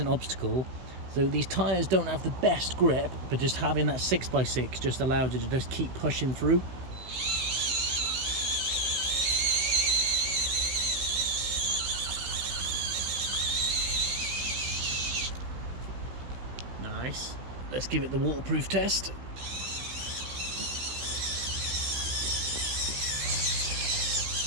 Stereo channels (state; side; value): late; left; 16 ms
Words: obstacle. So these tyres don't have the best grip, but just having that 6x6 just allows you to just keep pushing through. Nice. Let's give it the waterproof test.